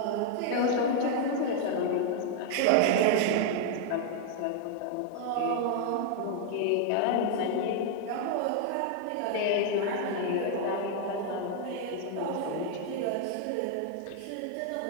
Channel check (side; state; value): both; different; correlation 0.00